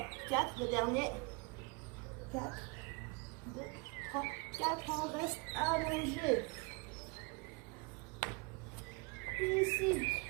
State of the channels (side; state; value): left; quieter; 30.5 dB